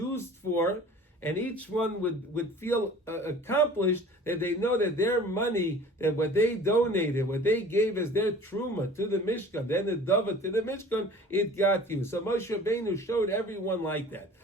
for. And each one would feel accomplished, that they know that their money, that what they donated, what they gave as their truma to the Mishkan, then the dava to the Mishkan, it got you. So Moshe Rabbeinu showed everyone like that.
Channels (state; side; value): normal; both; correlation 0.45